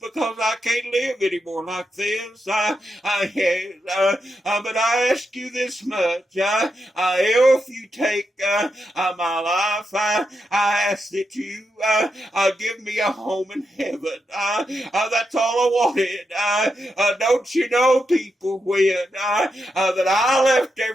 I can't live anymore like this. Yes, but I ask you this much. If you take my life, I ask that you give me a home in heaven. That's all I wanted. Don't you know, people, when that I left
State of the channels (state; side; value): normal; both; correlation 0.85